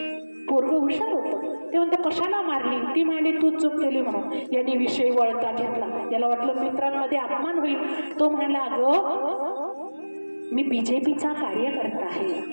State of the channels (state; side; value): inverted; both; correlation -1.00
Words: पोरग हुशार होतं, ते म्हणतं कशाला मारली. ती म्हणाली तू चूक केली म्हणून. यांनी विषय वळता घेतला. याला वाटलं मित्रांमध्ये अपमान होईल. तो म्हणाला अगं मी बीजेपीचा कार्यकर्ता